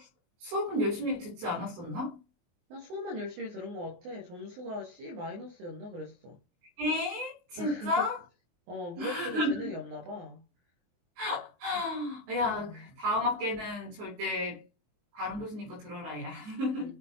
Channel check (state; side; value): late; left; 23 ms